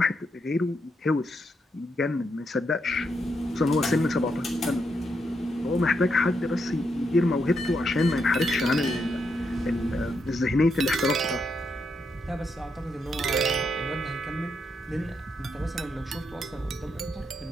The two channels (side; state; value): both; normal; correlation 0.81